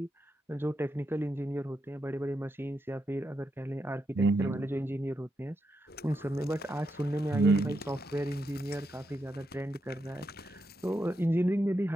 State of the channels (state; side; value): normal; both; correlation 0.84